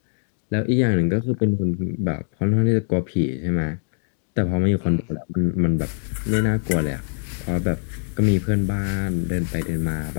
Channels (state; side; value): silent; right; digital silence